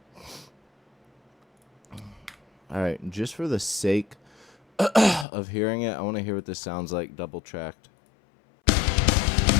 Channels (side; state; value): right; drops out; at 5.2 s